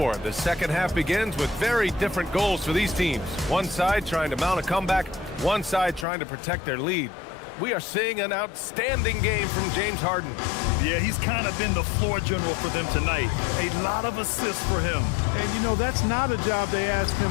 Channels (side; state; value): right; drops out; at 6.1 s